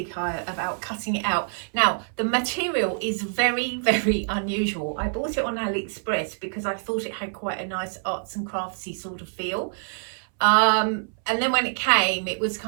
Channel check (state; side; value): silent; left; 61 dB below the other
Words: about cutting it out. Now the material is very, very unusual. I bought it on AliExpress because I thought it had quite a nice arts and craftsy sort of feel. And then when it came, it was